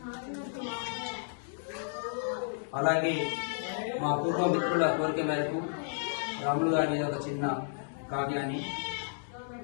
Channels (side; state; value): right; silent; digital silence